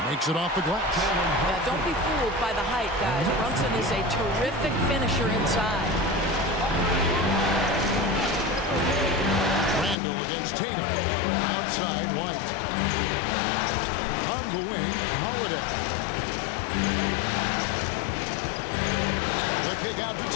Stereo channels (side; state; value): right; drops out; at 10.0 s